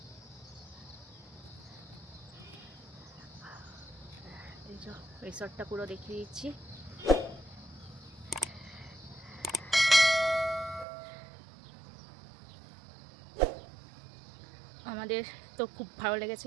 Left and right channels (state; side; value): drops out; left; at 10.9 s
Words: এই যে রিসর্টটা পুরো দেখিয়ে দিচ্ছি। আমাদের তো খুব ভালো